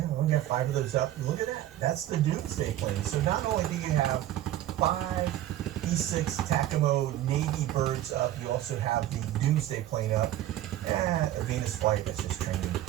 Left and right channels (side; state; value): left; quieter; 13.2 dB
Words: we got 5 of those up. Look at that. That's the Doomsday plane. So not only do you have 5 E6 Takamo Navy birds up, you also have the Doomsday plane up. A Venus flight, that's just training.